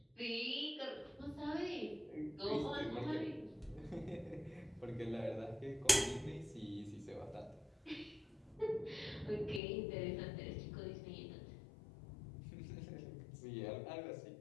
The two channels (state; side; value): drops out; right; at 9.6 s